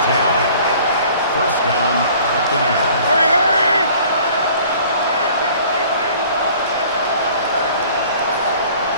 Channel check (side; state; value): both; inverted; correlation -0.51